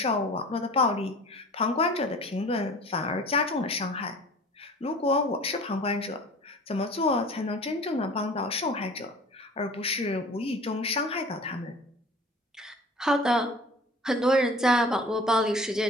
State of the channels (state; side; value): normal; both; correlation 0.44